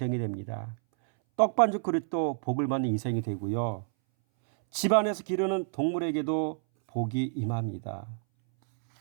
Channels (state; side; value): silent; left; 59 dB below the other